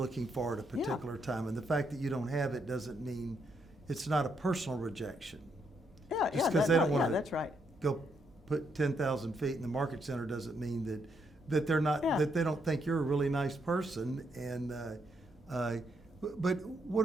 for at a particular time. And the fact that you don't have it doesn't mean it's not a personal rejection. Yeah, Just because they don't want to that's right. go put 10,000 feet in the market center doesn't mean that they're not, that they don't think you're a really nice person. And but what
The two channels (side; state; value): both; normal; correlation 0.77